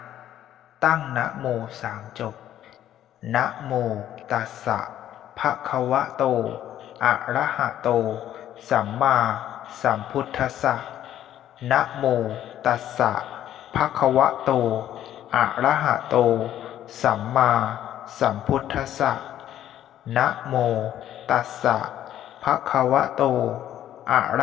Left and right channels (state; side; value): quieter; right; 11.7 dB